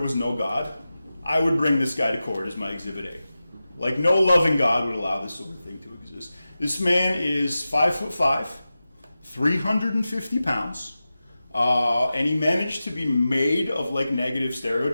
was no God, I would bring this guy to court as my Exhibit A. Like, no loving God would allow this sort of thing to exist. This man is 5'5", 350 pounds, and he managed to be made of like negative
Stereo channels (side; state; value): both; inverted; correlation -0.94